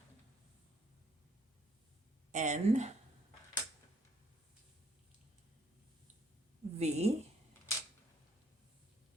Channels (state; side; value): normal; both; correlation 0.66